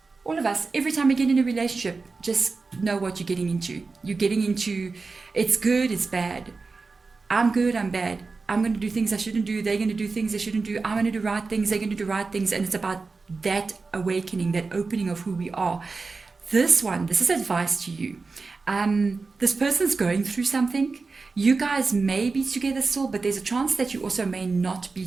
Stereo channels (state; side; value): quieter; left; 4.1 dB